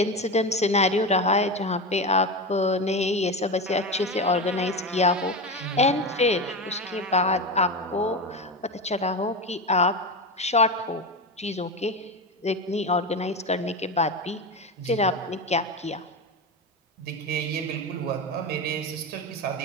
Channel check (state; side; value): normal; both; correlation 0.20